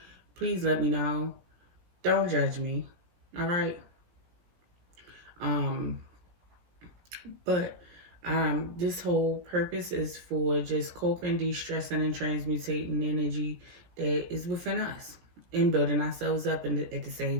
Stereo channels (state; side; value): late; left; 17 ms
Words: please let me know. Don't judge me. All right? But this whole purpose is for just coping, de-stressing, and transmutating energy that is within us and building ourselves up at the